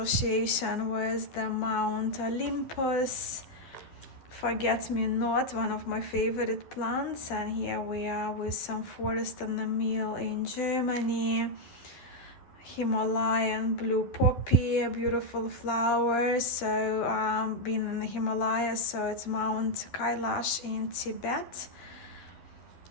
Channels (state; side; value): late; right; 12 ms